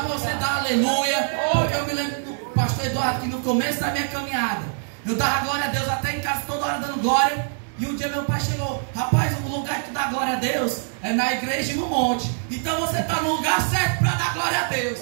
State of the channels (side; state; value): left; silent; digital silence